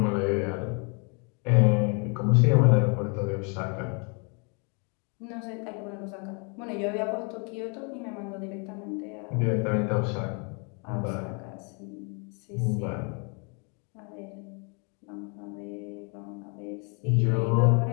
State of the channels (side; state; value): right; quieter; 35.6 dB